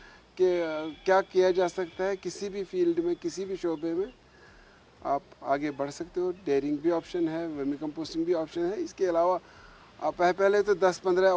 कि क्या किया जा सकता है किसी भी फील्ड में, किसी भी शोबे में आप आगे बढ़ सकते हो। डेयरिंग भी ऑप्शन है, वर्मी कंपोस्टिंग भी ऑप्शन है। इसके अलावा आप पहले तो 10-15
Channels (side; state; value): both; identical; correlation 1.00